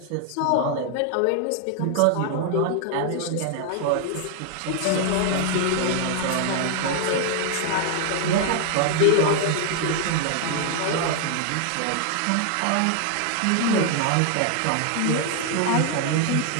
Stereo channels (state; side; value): different; both; correlation 0.00